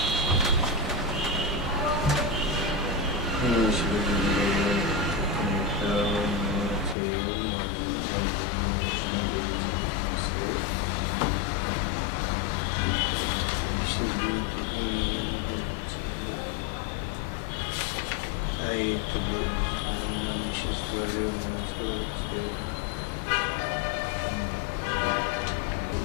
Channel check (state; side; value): drops out; right; at 7.0 s